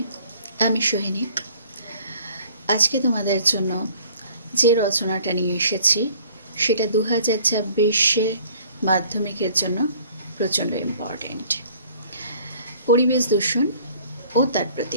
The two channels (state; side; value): inverted; both; correlation -0.54